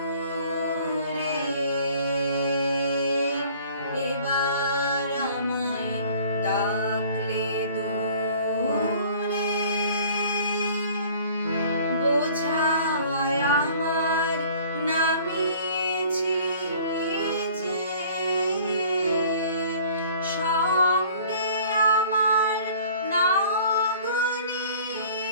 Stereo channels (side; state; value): both; inverted; correlation -0.51